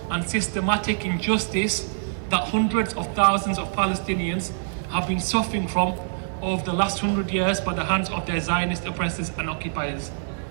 and systematic injustice that hundreds of thousands of Palestinians have been suffering from over the last 100 years by the hands of their Zionist oppressors and occupiers.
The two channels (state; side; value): silent; left; digital silence